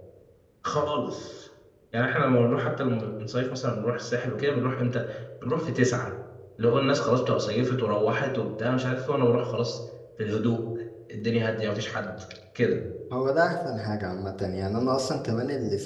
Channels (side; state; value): both; identical; correlation 1.00